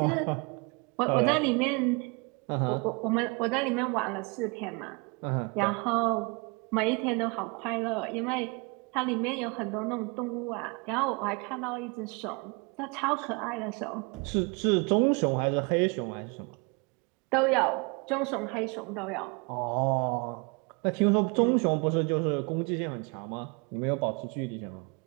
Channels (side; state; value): left; quieter; 30.7 dB